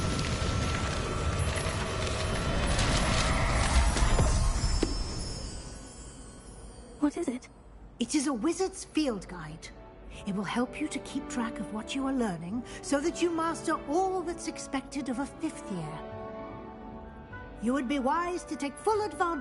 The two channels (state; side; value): identical; both; correlation 1.00